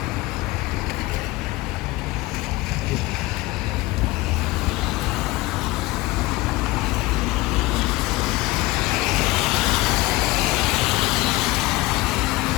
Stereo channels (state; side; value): quieter; right; 20.2 dB